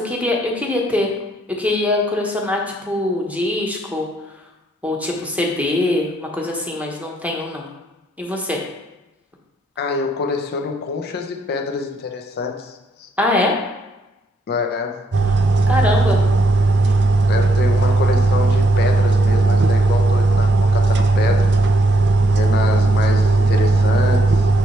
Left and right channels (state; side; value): normal; both; correlation 0.75